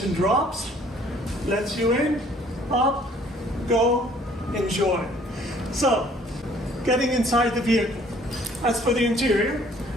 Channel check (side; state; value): both; normal; correlation 0.58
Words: drops, lets you in, up, go, enjoy. So, getting inside the vehicle. As for the interior,